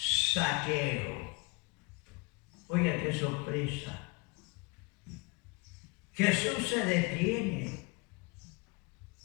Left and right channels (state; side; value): quieter; right; 26.6 dB